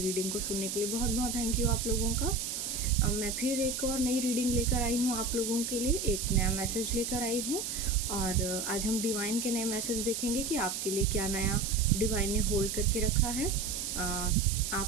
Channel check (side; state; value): right; noise; hiss, 3 dB below the sound